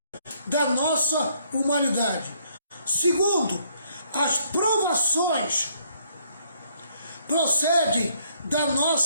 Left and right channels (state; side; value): inverted; both; correlation -0.67